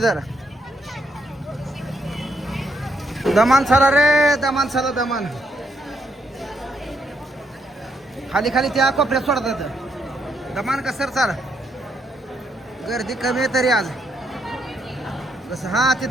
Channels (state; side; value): normal; both; correlation 0.76